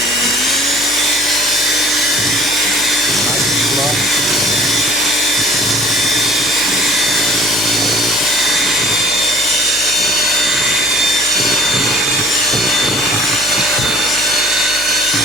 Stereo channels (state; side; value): noise; left; hum, 22 dB below the sound